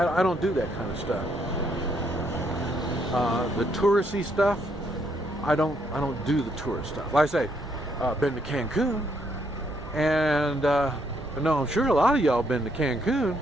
don't do that kind of stuff. The touristy stuff, I don't do the tourist stuff. Like I say, been to Cancun, and no, I'm sure a lot of y'all been to Cancun,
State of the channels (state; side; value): normal; both; correlation 0.72